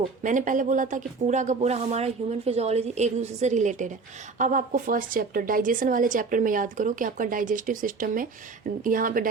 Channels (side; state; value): left; quieter; 4.4 dB